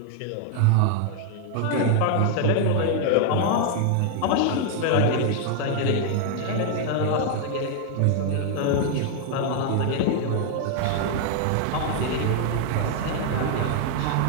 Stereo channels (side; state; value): both; different; correlation 0.00